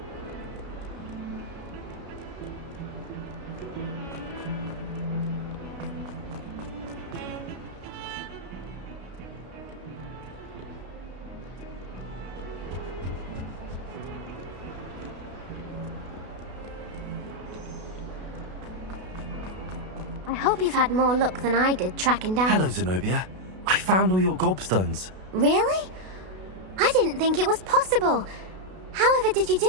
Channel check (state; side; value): late; left; 32 ms